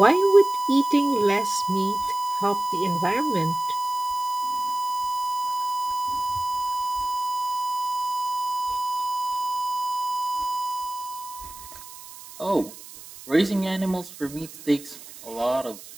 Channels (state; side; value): noise; right; hiss, 16 dB below the sound